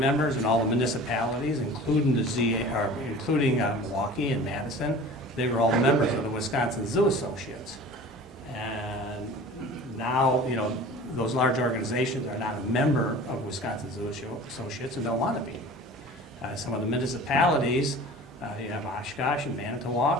and all the municipalities, including the ZA, or including Milwaukee and Madison. They were all members of the Wisconsin Zoo Associates. And now, you know, those large organizations are not a member of Wisconsin Zoo Associates and don't want to be. Some of the municipalities, you have Oshkosh and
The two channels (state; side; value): normal; both; correlation 0.40